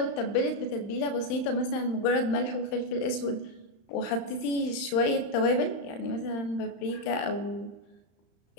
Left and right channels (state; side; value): late; right; 35 ms